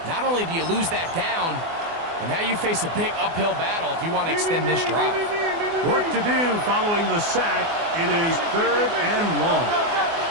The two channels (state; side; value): late; left; 24 ms